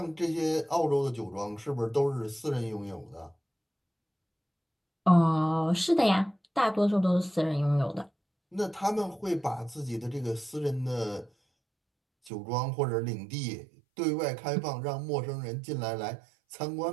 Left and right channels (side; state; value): left; drops out; at 12.3 s